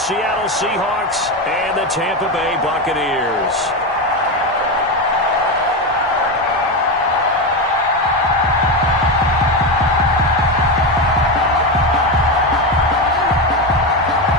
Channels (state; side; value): normal; both; correlation 0.14